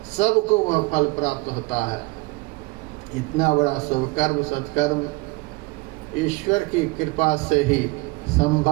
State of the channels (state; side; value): quieter; left; 23.8 dB